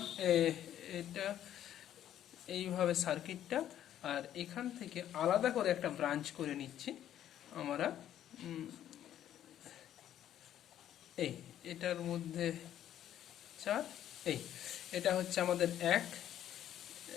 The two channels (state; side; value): quieter; right; 11.2 dB